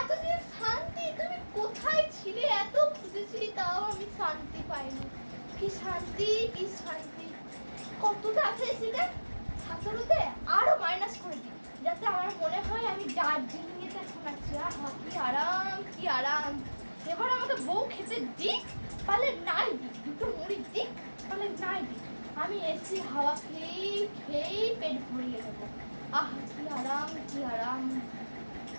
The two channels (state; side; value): inverted; both; correlation -1.00